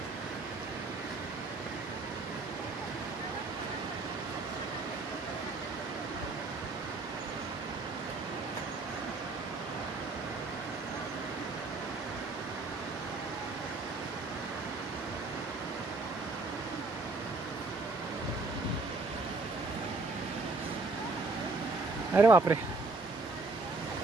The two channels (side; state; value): left; quieter; 3.4 dB